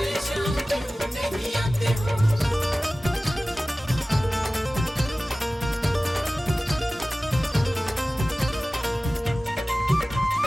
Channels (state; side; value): normal; both; correlation 0.97